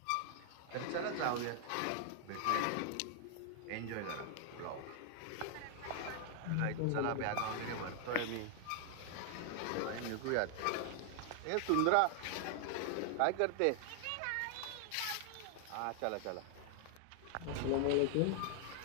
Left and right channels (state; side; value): different; both; correlation 0.00